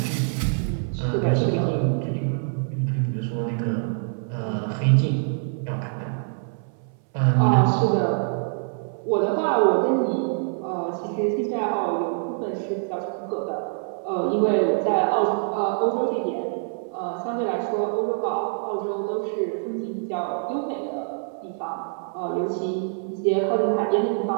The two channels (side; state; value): left; silent; 62 dB below the other